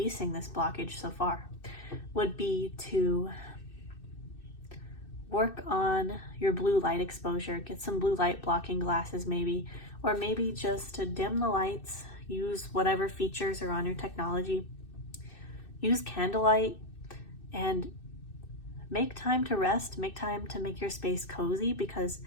this blockage so far would be to work on your blue light exposure. Get some blue light blocking glasses maybe, or maybe just to dim the lights. Use whatever features are on your technology. Use candlelight and make time to rest. Make time to make your space cozy, because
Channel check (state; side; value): late; right; 2.6 ms